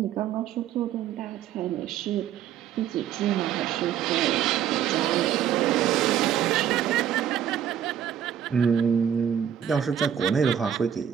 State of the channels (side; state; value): left; quieter; 9.4 dB